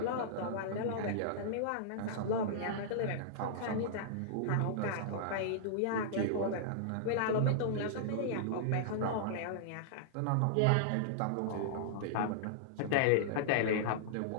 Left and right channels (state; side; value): different; both; correlation -0.02